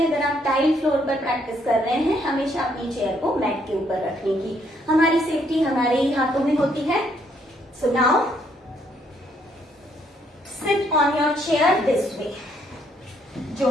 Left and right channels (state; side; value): normal; both; correlation 0.70